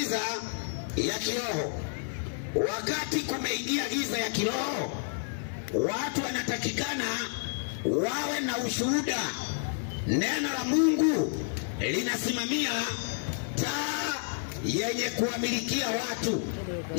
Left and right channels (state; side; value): silent; right; digital silence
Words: ya kiroho. Wakati kumeingia giza ya kiroho, watu wanatakikana wawe na ushuhuda. Neno la Mungu linasimamia taa yenye kuwamilikia watu.